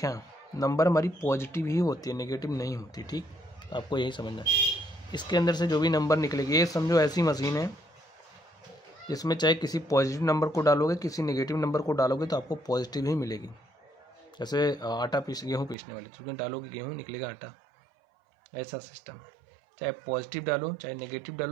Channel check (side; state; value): left; drops out; at 15.8 s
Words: नंबर हमारी पॉजिटिव ही होती है, नेगेटिव नहीं होती। ठीक, आपको यही समझना है। इसके अंदर से जो भी नंबर निकलेगी, ये समझो ऐसी मशीन है इसमें चाहे किसी पॉजिटिव नंबर को डालोगे, किसी नेगेटिव नंबर को डालोगे तो आपको पॉजिटिव ही मिलेगी। जैसे गेहूँ पीसने वाले, तो डालोगे गेहूँ निकलेगा आटा, ऐसा सिस्टम है। चाहे पॉजिटिव डालो चाहे नेगेटिव